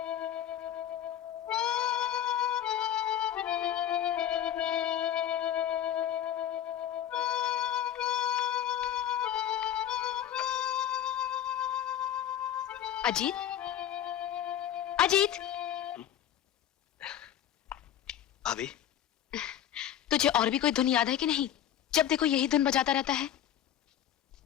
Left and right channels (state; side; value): quieter; right; 10.6 dB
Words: अजीत, अजीत, भाभी, तुझे और भी कोई धुन याद है कि नहीं? जब देखो यही धुन बजाता रहता है।